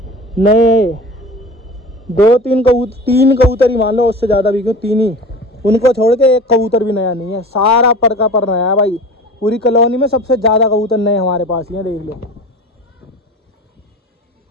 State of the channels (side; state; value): both; normal; correlation 0.37